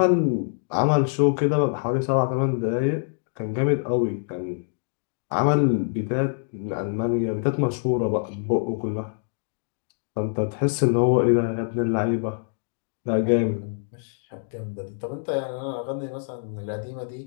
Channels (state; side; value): silent; right; digital silence